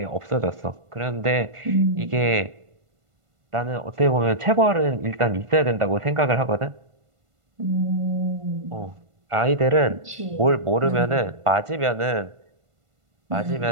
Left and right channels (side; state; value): left; late; 1.5 ms